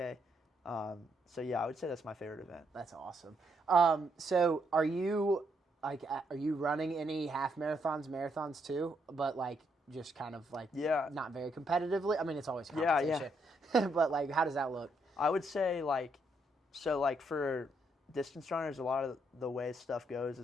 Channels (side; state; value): both; normal; correlation 0.75